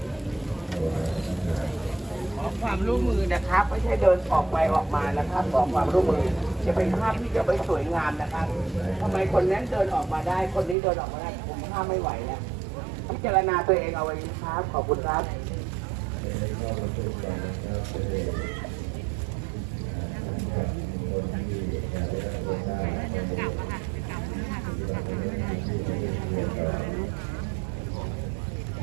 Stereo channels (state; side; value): drops out; left; at 10.8 s